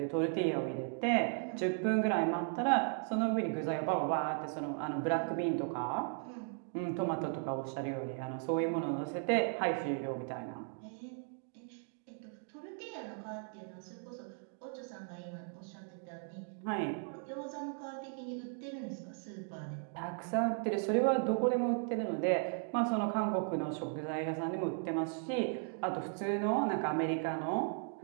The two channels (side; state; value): left; silent; 53 dB below the other